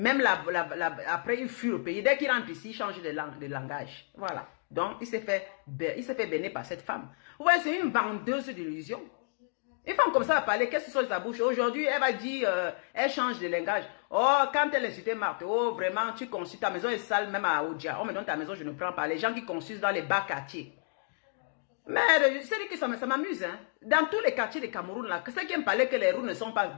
après, il fuit le pays. Dès qu'il rentre ici, il change de langage. Voilà. Donc, il s'est fait bénir par cette femme. Vous voyez, c'est une vendeuse d'illusions. Une femme comme ça va parler, qu'est-ce qui sort de sa bouche? Aujourd'hui, elle va dire, elle change de langage. Oh, quand elle insultait Marthe, oh, vraiment, tu consultes, ta maison est sale, même à Oudja. Oh, mais dans ta maison, je ne prends pas. Les gens qui consultent dans les bas quartiers. Mais c'est que ça m'amuse, hein. Dans tous les quartiers de Cameroun, là, ceux qui me parlaient que les routes ne sont pas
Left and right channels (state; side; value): silent; right; digital silence